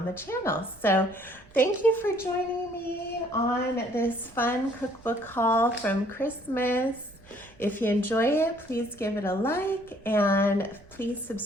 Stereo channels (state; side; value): noise; right; rumble, 26 dB below the sound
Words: the channel. So thank you for joining me on this fun cookbook haul from Christmas. If you enjoy it, please give it a like and please